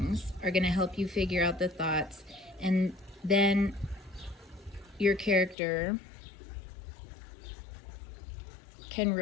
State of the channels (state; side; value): drops out; right; at 5.6 s